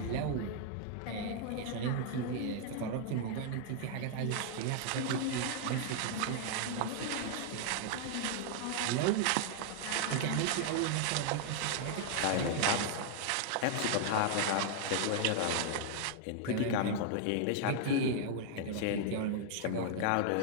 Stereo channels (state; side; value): different; both; correlation 0.00